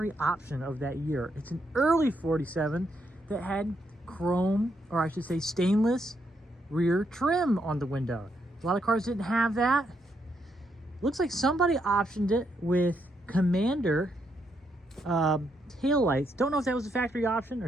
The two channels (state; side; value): normal; both; correlation 0.78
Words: option of that year. It's an early 47 that had chrome, or I should say stainless, rear trim on the window. A lot of cars didn't have that. Looks like somebody optioned it with Commander taillights. Don't know if that was a factory option or